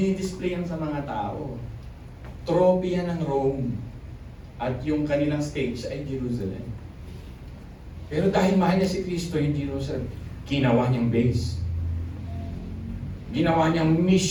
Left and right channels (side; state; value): both; identical; correlation 1.00